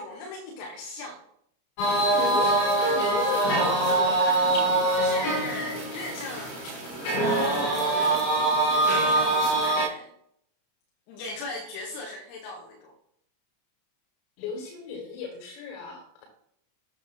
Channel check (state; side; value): late; right; 32 ms